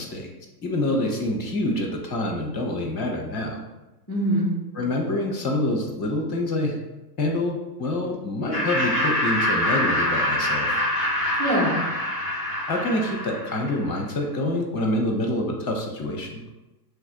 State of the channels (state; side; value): late; right; 2.1 ms